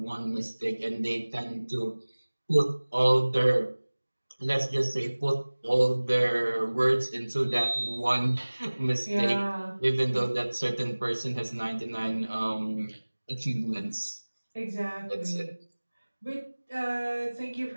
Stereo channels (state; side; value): inverted; both; correlation -1.00